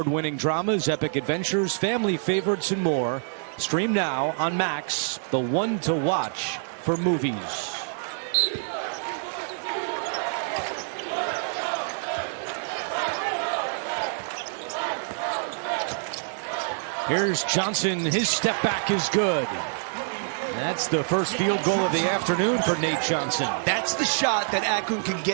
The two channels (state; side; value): silent; left; 61 dB below the other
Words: dramas, epic adventures, family favorites, and more. Stream now on Max, the one to watch for movies. Here's Johnson. His step back is good. That's the first field goal of the afternoon for Nate Johnson. That's the shot that Akron can